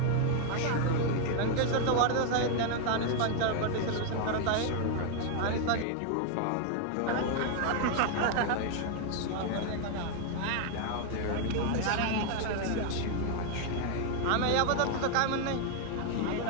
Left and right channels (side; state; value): both; different; correlation 0.00